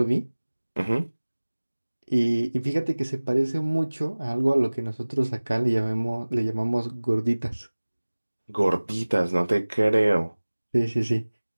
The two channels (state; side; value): inverted; both; correlation -1.00